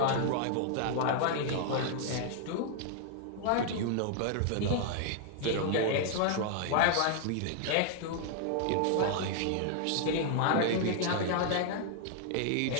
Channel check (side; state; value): both; different; correlation 0.00